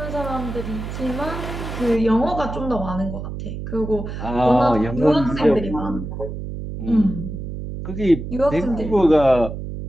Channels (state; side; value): noise; right; hum, 7 dB below the sound